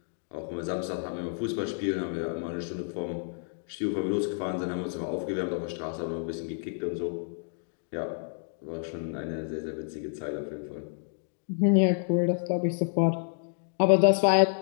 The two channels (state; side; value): silent; right; digital silence